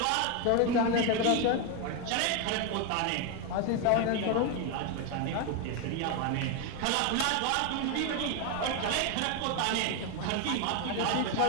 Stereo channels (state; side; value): different; both; correlation 0.01